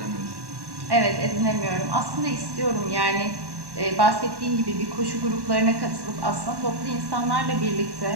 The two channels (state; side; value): late; left; 1.1 ms